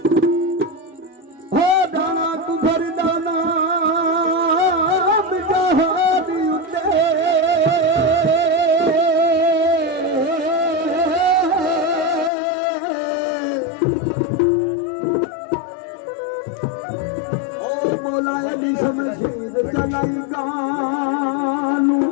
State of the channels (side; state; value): right; drops out; at 12.3 s